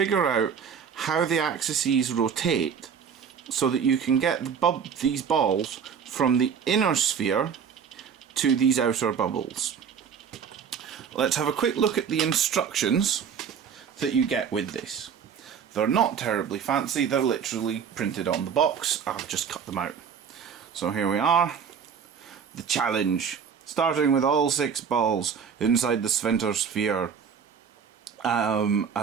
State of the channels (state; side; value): quieter; left; 7.1 dB